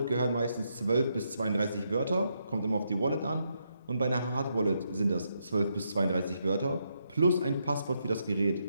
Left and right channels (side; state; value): both; inverted; correlation -0.80